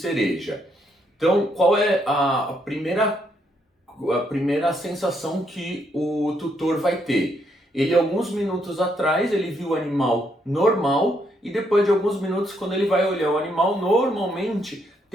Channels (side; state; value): both; normal; correlation 0.75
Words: Então, qual é a primeira sensação que o tutor vai ter? Ele, alguns minutos atrás, ele viu o animal normal e depois de alguns minutos, quando ele vai olhar o animal, normalmente